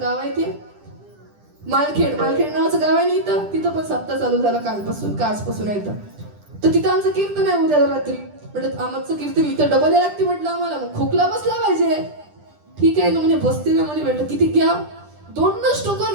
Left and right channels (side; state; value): left; late; 10 ms